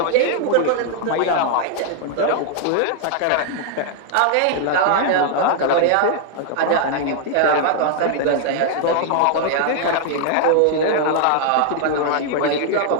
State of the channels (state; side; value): different; both; correlation 0.00